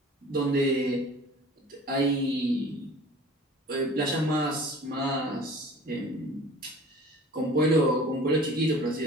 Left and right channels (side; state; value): both; normal; correlation 0.45